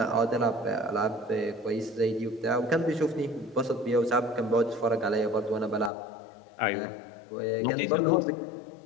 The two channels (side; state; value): right; drops out; at 5.9 s